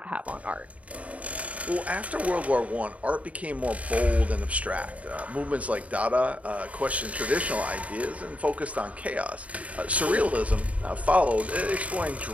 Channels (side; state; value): left; late; 0.067 ms